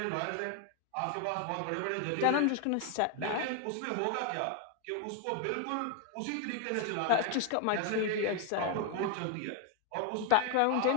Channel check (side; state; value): both; different; correlation 0.01